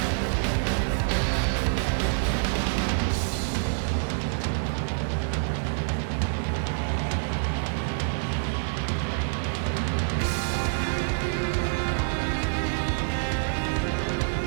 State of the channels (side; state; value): left; silent; digital silence